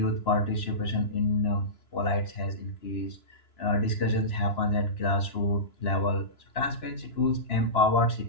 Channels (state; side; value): late; right; 2.9 ms